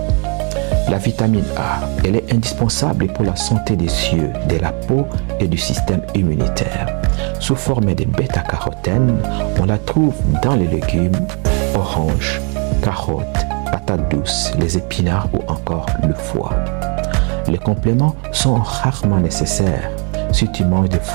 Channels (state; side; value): quieter; left; 36.6 dB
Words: La vitamine A, elle est indispensable pour la santé des yeux, de la peau et du système immunitaire. Sous forme de bêta-carotène, on la trouve dans les légumes, oranges, carottes, patates douces, les épinards ou encore le foie. Les compléments sont rarement nécessaires si tu manges des